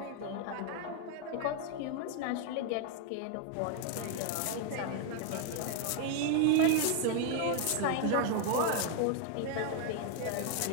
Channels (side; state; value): both; different; correlation 0.00